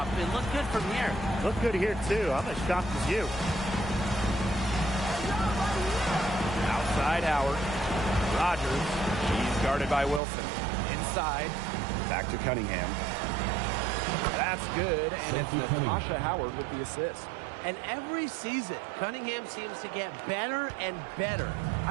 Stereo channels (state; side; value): drops out; left; at 10.2 s